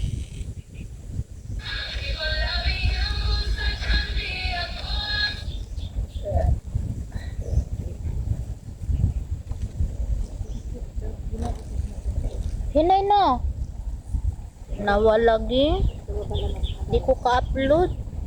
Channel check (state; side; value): identical; both; correlation 1.00